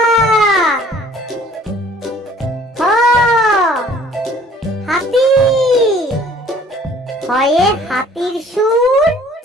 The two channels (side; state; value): both; normal; correlation 0.55